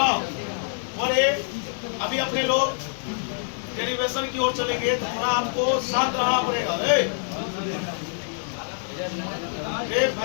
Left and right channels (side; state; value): right; silent; digital silence